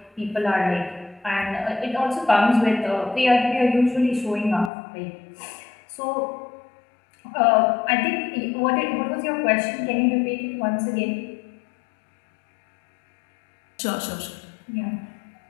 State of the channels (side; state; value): right; drops out; at 4.7 s